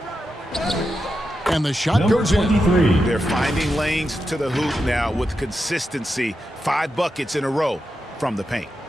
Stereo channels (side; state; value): both; normal; correlation 0.88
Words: And the shot Number goes in. 23. They're finding lanes to the hoop now with consistency. 5 buckets in a row from the paint.